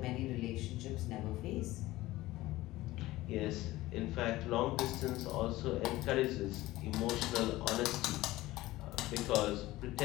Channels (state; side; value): quieter; right; 17.6 dB